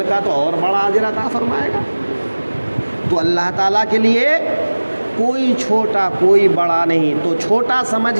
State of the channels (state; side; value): inverted; both; correlation -1.00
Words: کا تو اور بڑا اجر عطا فرمائے گا۔ تو اللہ تعالیٰ کے لیے کوئی چھوٹا کوئی بڑا نہیں، تو چھوٹا سمجھ